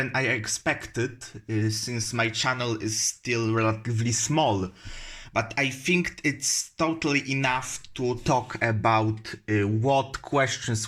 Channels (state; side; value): identical; both; correlation 1.00